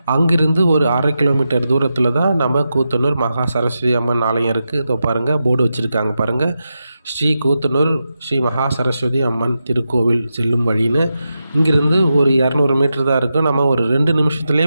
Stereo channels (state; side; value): inverted; both; correlation -0.89